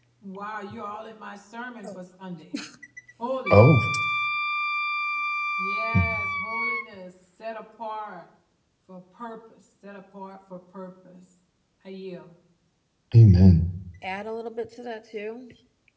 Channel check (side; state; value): both; identical; correlation 1.00